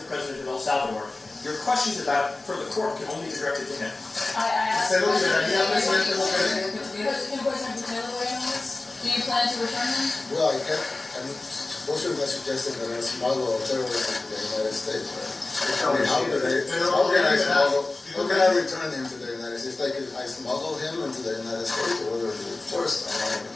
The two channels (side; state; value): right; quieter; 3.2 dB